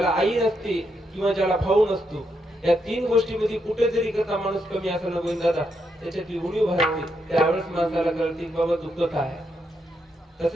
आई नसते किंवा ज्याला भाऊ नसतो, या तीन गोष्टीमध्ये कुठेतरी कसा माणूस कमी असं न दादा त्याच्यातली उणीव भासते. त्यावेळेस माणसाला कळते की बाबा दुःखत आहे.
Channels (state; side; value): normal; both; correlation 0.80